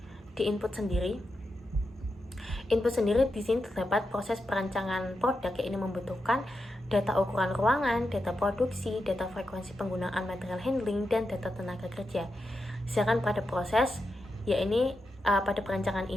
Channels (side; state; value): both; normal; correlation 0.88